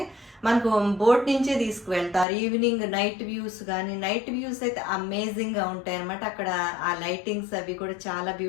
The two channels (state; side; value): drops out; right; at 2.2 s